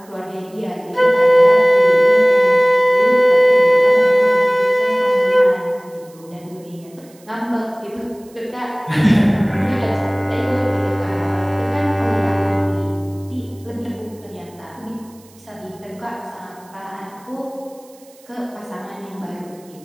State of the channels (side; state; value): right; noise; hiss, 28 dB below the sound